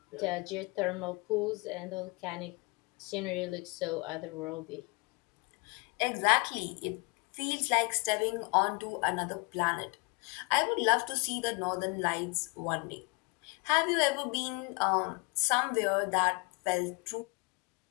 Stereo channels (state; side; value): quieter; right; 29.9 dB